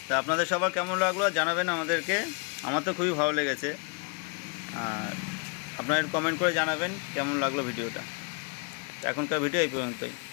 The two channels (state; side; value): quieter; right; 33.6 dB